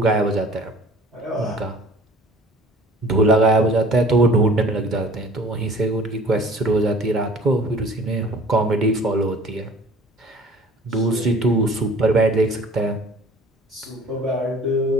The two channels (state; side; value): normal; both; correlation 0.48